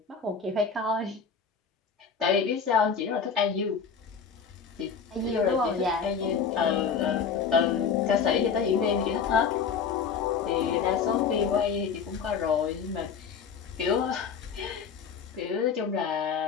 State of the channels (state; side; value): quieter; right; 6.3 dB